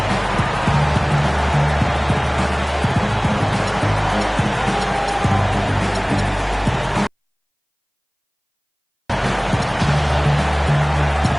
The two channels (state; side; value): identical; both; correlation 1.00